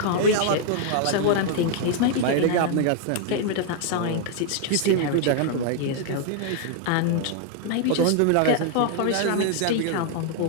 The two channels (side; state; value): both; different; correlation 0.00